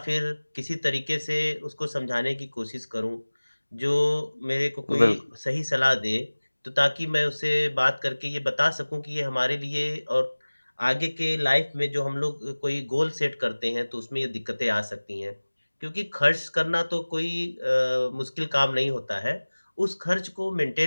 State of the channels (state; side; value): inverted; both; correlation -1.00